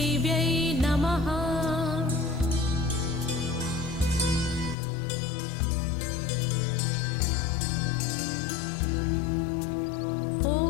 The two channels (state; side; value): drops out; right; at 4.8 s